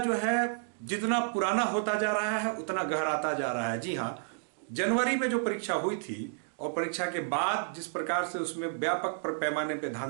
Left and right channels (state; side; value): silent; left; digital silence